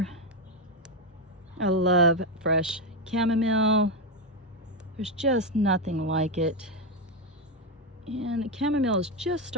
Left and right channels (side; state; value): both; normal; correlation 0.08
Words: I love fresh chamomile. There's just nothing like it. And the chamomile is just